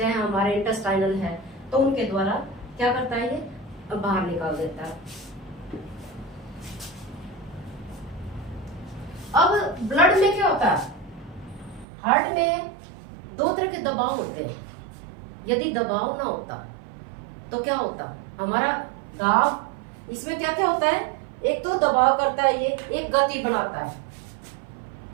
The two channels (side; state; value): left; drops out; at 11.9 s